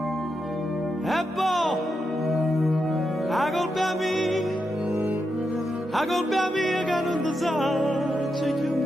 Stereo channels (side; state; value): both; normal; correlation 0.85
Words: E poi, la colpa mia che non ti sa, c'è più